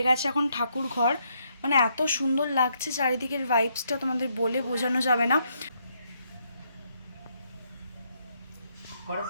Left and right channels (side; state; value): both; inverted; correlation -0.75